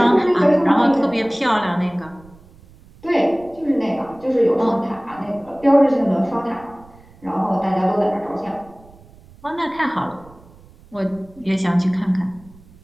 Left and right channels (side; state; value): right; noise; rumble, 25 dB below the sound